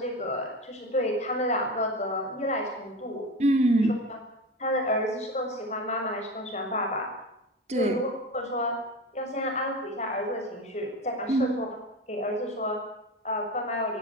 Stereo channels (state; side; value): normal; both; correlation 0.26